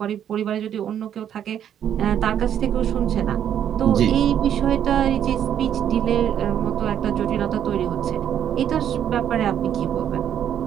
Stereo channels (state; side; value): quieter; left; 9.7 dB